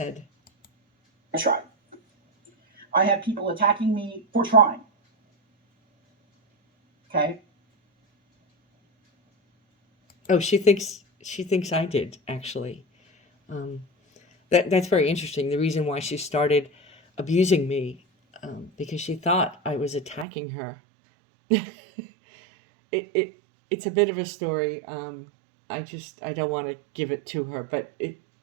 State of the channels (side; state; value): left; drops out; at 20.2 s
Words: I tried. I had people attacking me for trying. Okay. Oh, she thinks I did, actually. That's very interesting. The reason why she started abusing me, because she thought I was attacking her. It's a bit of a story. I don't want to give it to her, but it